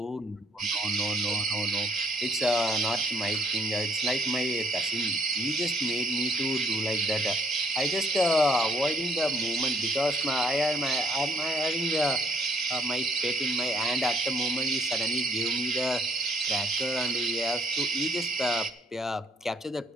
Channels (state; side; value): normal; both; correlation 0.64